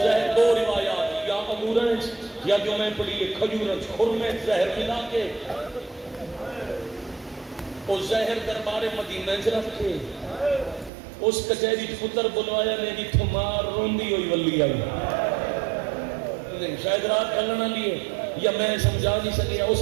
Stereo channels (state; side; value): drops out; left; at 10.9 s